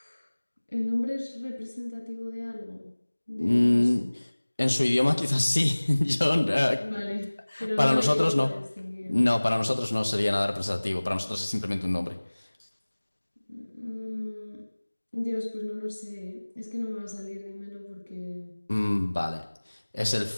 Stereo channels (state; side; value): inverted; both; correlation -1.00